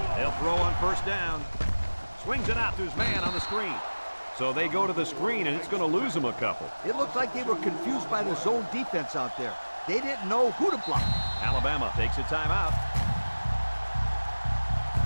They'll throw on first down. Swings it out to his man on the screen. So they go to the screen, and it's going to lose them a couple. It looked like they were confused by the zone defense out there. They didn't know who to block. Alabama takes a timeout.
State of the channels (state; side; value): inverted; both; correlation -1.00